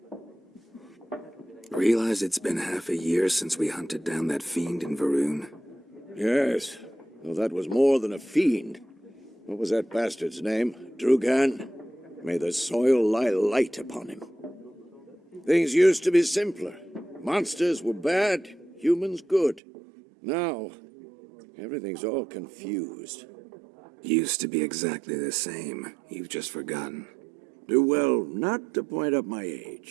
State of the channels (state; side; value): drops out; left; at 19.6 s